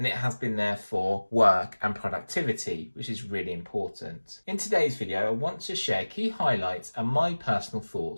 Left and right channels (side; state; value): both; inverted; correlation -1.00